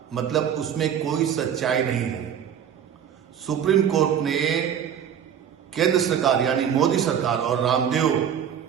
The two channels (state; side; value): quieter; left; 8.8 dB